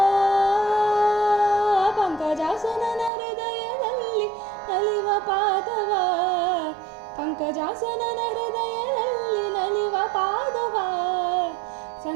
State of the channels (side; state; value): left; drops out; at 3.1 s